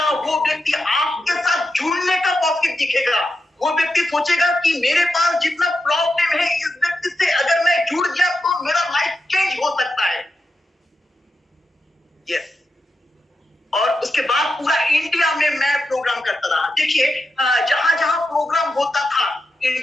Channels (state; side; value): normal; both; correlation 0.88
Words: वो व्यक्ति आपके साथ जुड़ने का प्रॉफिट दिखेगा। वो व्यक्ति सोचेगा कि मेरे पास जितना प्रॉब्लम है, इस व्यक्ति से अगर मैं जुड़ गया तो मेरा लाइफ चेंज हो सकता है। यस। और उसके बाद पूरा इंडिया में मैं प्रोग्राम करता रहा। देखिए, जहां जहां प्रोग्राम होता था